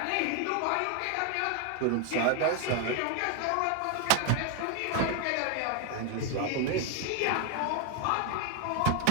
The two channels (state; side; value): different; both; correlation 0.00